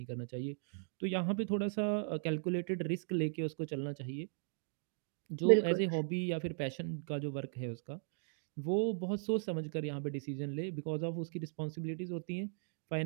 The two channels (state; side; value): silent; left; digital silence